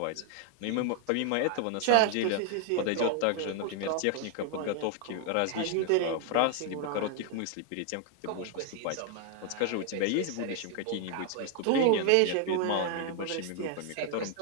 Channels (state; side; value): different; both; correlation 0.00